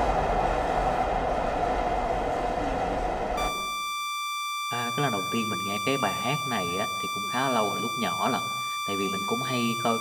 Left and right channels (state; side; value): identical; both; correlation 1.00